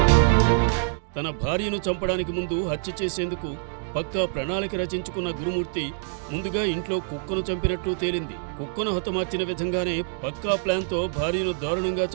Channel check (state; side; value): silent; left; digital silence